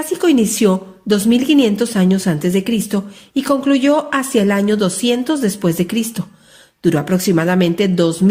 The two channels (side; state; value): both; identical; correlation 1.00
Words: inició 2500 años antes de Cristo y concluyó hacia el año 200 después de Cristo. Duró aproximadamente